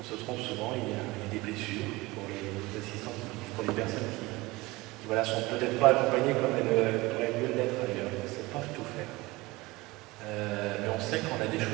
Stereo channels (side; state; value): left; quieter; 21.5 dB